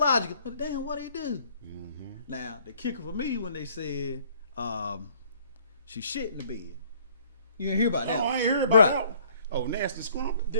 but damn, what'd he do? Now, the kicker for me when they said she shit in the bed. You didn't hear about that? Oh, I ain't heard about Bruh. that. Oh, nasty scrump.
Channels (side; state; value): both; inverted; correlation -0.59